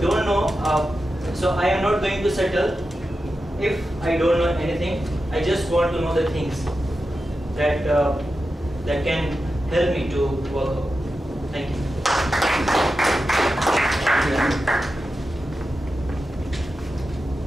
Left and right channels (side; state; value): both; normal; correlation 0.91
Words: don't know. So I am not going to settle if I don't know anything. I just want to know the things that that can help me to work out. Thank you.